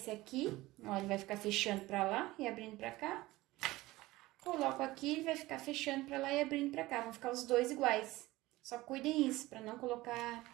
aqui, ó, ele vai ficar fechando para lá e abrindo para cá. Coloco aqui, ele vai ficar fechando para lá e abrindo para cá. Vão ficar os dois iguais. Só cuidem isso, para não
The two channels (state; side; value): quieter; left; 18.8 dB